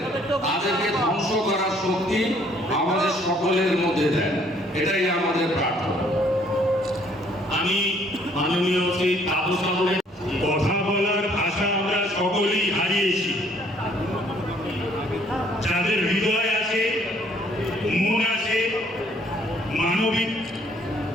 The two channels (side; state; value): both; normal; correlation 0.62